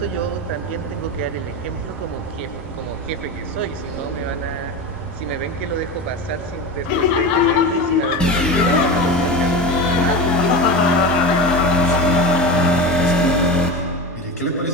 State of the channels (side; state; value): both; normal; correlation 0.24